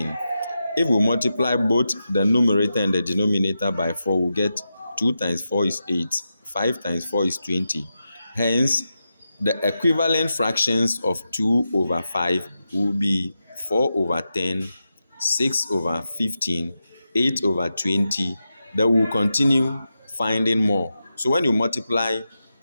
If we multiply both the numerator and the denominator by 4, we'll get 2 times 4 is 8, 5 times 4 is 20. Hence, the equivalent fractions of 2 over 5 will be 4 over 10, 6 over 15, 8 over 20. Then we'll continue finding more. So when you multiply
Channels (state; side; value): inverted; both; correlation -0.89